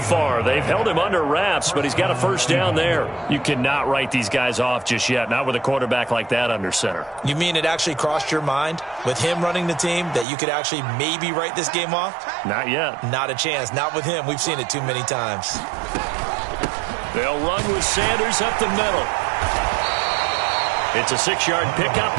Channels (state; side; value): drops out; left; at 10.2 s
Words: They've held him under wraps, but he's got a first down there. You cannot write these guys off just yet, not with a quarterback like that under center. You mean it actually crossed your mind with him running the team that you could actually maybe write this game off? Not yet. Not a chance. Not with him. We've seen it too many times. They'll run with Sanders up the middle. It's a 6-yard pickup,